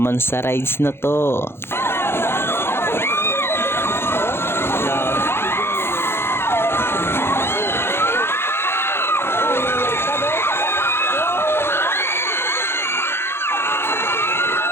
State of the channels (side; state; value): right; late; 0.11 ms